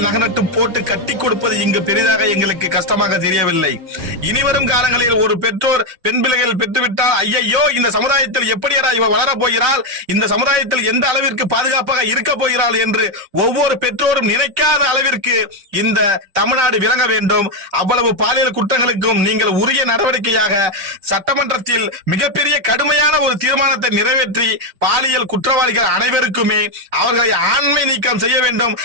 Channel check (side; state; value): left; late; 5.3 ms